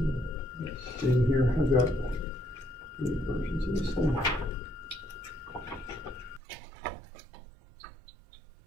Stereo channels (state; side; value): drops out; left; at 6.4 s